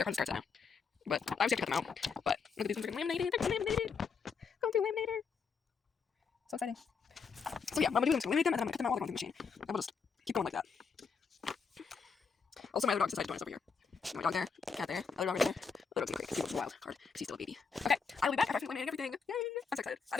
cards starts now. But obviously I have to cut them out. But look at these ones are laminated. They're laminated. Going through laminator. So exciting. So yeah, what I'm gonna do is laminate them and then I'm gonna cut them out while they're going through the machine. And we'll just keep going like that. Also, my other dog decided to join us over here. My dog there, cat there, other dog right there. Other dog's in the crate because he was a wild card because he's still a baby. Okay, I will be back after laminating everything. Yay! I'm so excited.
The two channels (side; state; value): right; quieter; 5.6 dB